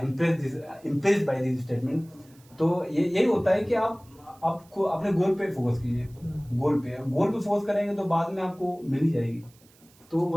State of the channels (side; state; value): right; noise; hiss, 29 dB below the sound